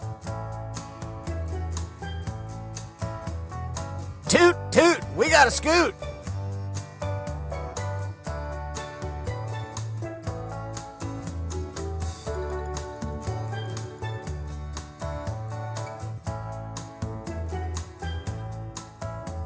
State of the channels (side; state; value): both; identical; correlation 1.00